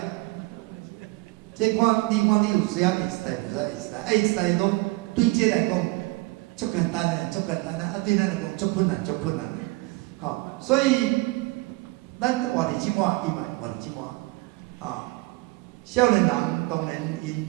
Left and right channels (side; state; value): left; quieter; 22.9 dB